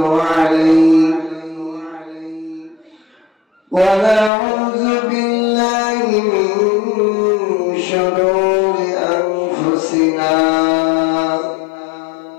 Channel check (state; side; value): drops out; right; at 4.3 s